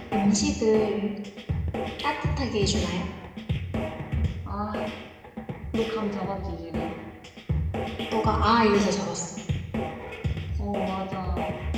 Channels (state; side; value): identical; both; correlation 1.00